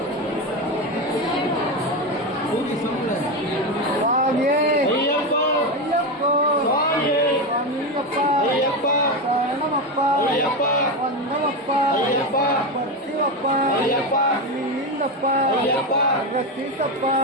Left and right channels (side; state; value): both; normal; correlation 0.15